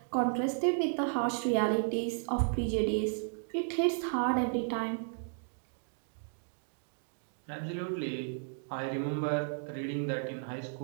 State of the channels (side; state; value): left; silent; digital silence